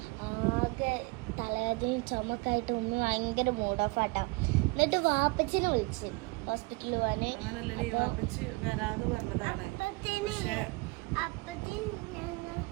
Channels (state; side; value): quieter; left; 27.2 dB